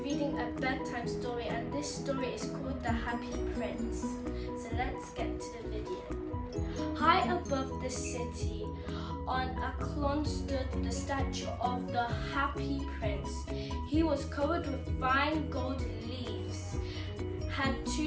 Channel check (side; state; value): both; identical; correlation 1.00